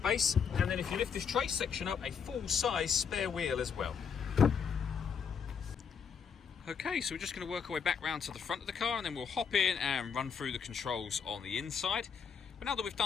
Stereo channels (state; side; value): quieter; right; 6.7 dB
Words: and then if you lift this trace section up, a full-size spare wheel as well. Okay, so we're just going to work our way back round to the front of the car, and then we'll hop in and run through the controls on the inside. But now that we've